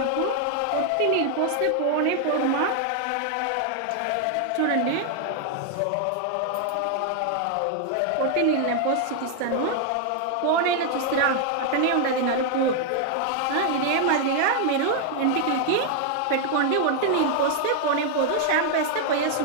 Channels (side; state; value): both; different; correlation 0.00